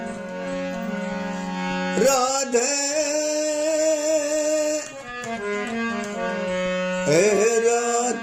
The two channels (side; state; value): both; identical; correlation 1.00